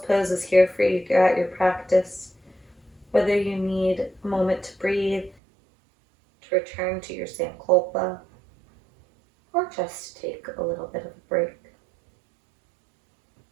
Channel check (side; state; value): left; drops out; at 5.4 s